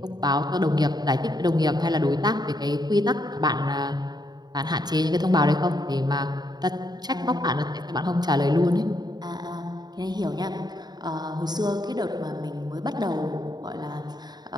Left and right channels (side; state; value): left; late; 0.20 ms